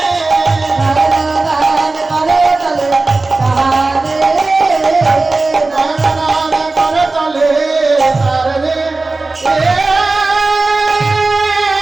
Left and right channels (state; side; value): quieter; left; 3.4 dB